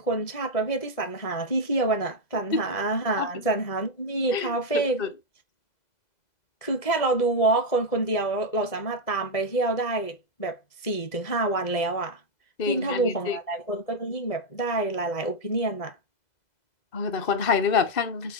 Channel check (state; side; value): late; right; 2.0 ms